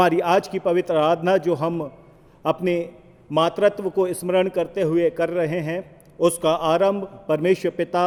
आज की पवित्र आराधना जो हम अपने मातृत्व को स्मरण करते हुए कर रहे हैं, उसका आरंभ परमेश्वर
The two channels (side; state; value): both; identical; correlation 1.00